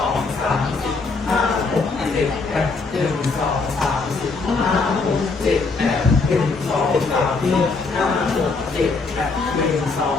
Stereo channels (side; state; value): right; quieter; 4.1 dB